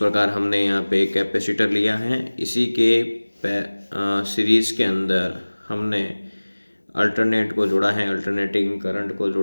हमने यहाँ पे एक कैपेसिटर लिया है, इसी के सीरीज के अंदर हमने अल्टरनेट को जोड़ा है, अल्टरनेटिंग करंट को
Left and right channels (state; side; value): inverted; both; correlation -1.00